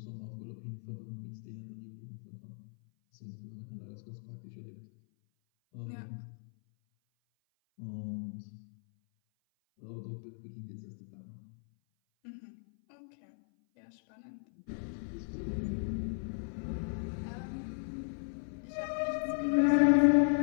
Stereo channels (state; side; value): silent; right; 53 dB below the other